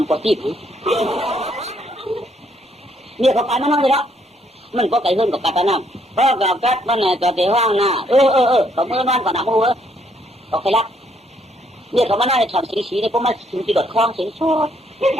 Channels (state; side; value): normal; both; correlation 0.70